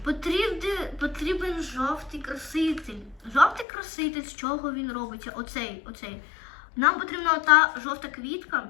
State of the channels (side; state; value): right; drops out; at 3.7 s